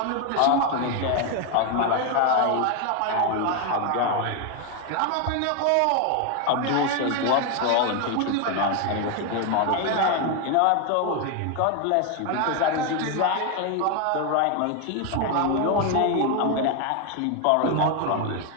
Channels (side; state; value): both; different; correlation 0.01